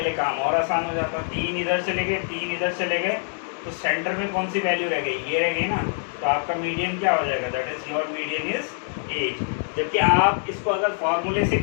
लिए काम और आसान हो जाता। 3 इधर चले गए, 3 इधर चले गए, तो सेंटर में कौन सी वैल्यू रह गई, ये रह गई ना। तो आपका मीडियन क्या हो जाएगा, that is your median is 8। जबकि आप इसको अगर फॉर्मूले से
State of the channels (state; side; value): silent; right; 62 dB below the other